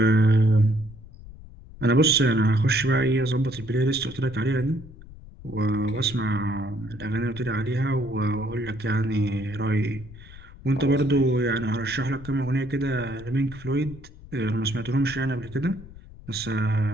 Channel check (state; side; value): noise; left; rumble, 18 dB below the sound